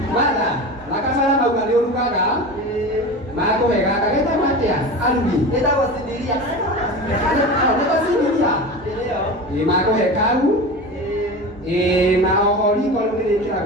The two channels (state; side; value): normal; both; correlation 0.29